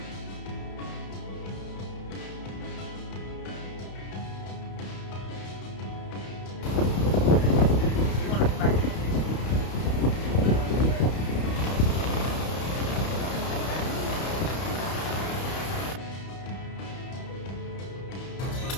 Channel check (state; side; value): late; right; 31 ms